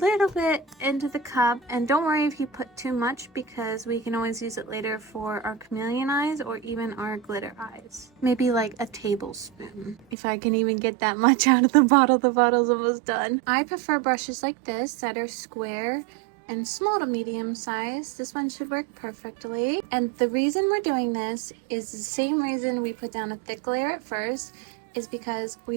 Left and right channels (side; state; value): left; drops out; at 10.2 s